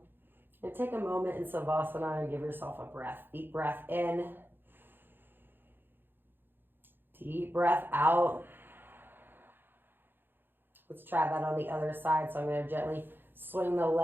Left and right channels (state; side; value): late; left; 0.099 ms